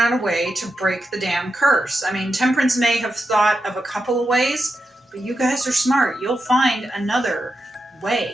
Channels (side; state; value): both; normal; correlation 0.88